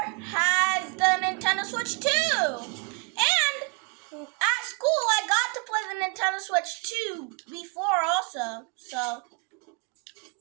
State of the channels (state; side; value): quieter; left; 35.0 dB